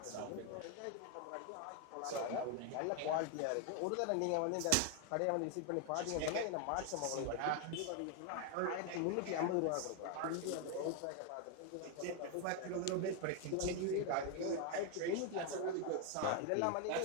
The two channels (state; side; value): different; both; correlation 0.01